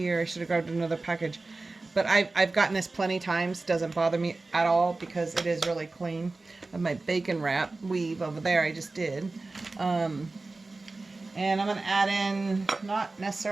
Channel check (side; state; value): left; quieter; 3.4 dB